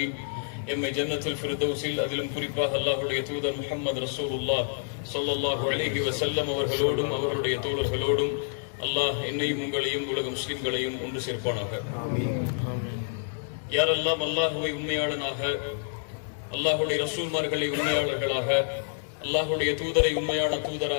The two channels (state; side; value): silent; right; digital silence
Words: எம்மை ஜன்னத்துல் ஃபிர்தௌஸில், அதிலும் குறிப்பாக அல்லாஹ்வுடைய தூதர் முஹம்மது ரசூலுல்லாஹ் ஸல்லல்லாஹு அலைஹி வஸல்லம் அவர்களோடும் அவர்களுடைய தோழர்களோடும் அல்லாஹ் என்னையும் உங்களையும் உலக முஸ்லிம்களையும் ஒன்று சேர்ப்பானாக. யாரெல்லாம் அல்லாஹுவை உண்மையாளனாக, அல்லாஹுடைய ரசூல்மார்களை உண்மையாளர்களாக, அல்லாஹுடைய தூதரை உண்மையான